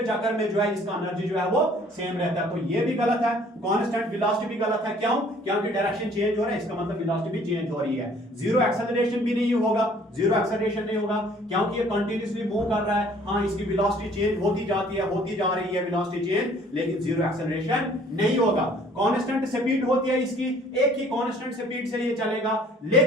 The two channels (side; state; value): both; normal; correlation 0.56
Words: में जो है इसका एनर्जी जो है वो सेम रहता है। तो ये भी गलत है। कांस्टेंट वेलोसिटी भी गलत है। क्यों? क्योंकि डायरेक्शन चेंज हो रहा है, इसका मतलब वेलोसिटी भी चेंज हो रही है। जीरो एक्सेलरेशन भी नहीं होगा, जीरो एक्सेलरेशन नहीं होगा क्योंकि ये कंटिन्यूअसली मूव कर रहा है। हाँ, इसकी वेलोसिटी चेंज होती जाती है, होती जा रही है वेलोसिटी चेंज, लेकिन जीरो एक्सेलरेशन नहीं होगा। कांस्टेंट स्पीड होती है इसकी, एक ही कांस्टेंट स्पीड से ये चलेगा,